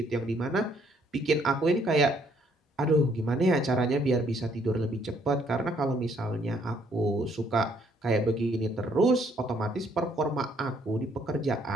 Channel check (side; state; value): both; normal; correlation 0.67